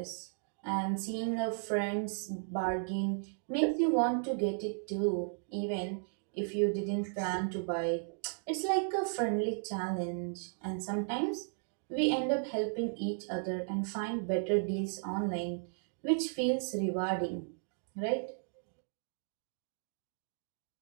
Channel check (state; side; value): silent; left; digital silence